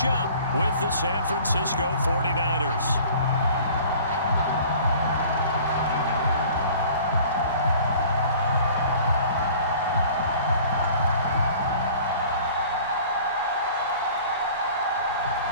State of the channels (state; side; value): inverted; both; correlation -0.48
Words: up with the San Francisco 49ers.